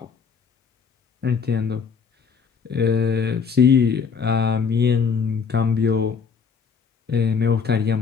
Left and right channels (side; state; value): right; quieter; 5.9 dB